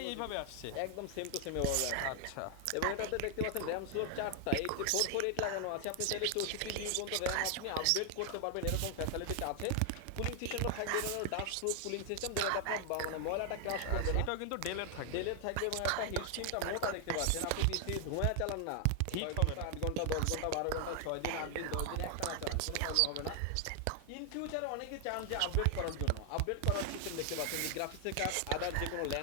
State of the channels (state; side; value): different; both; correlation 0.00